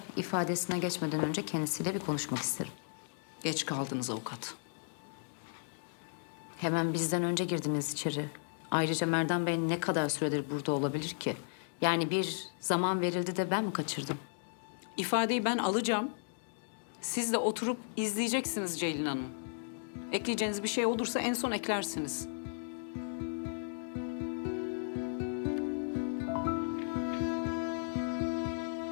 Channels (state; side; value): silent; right; digital silence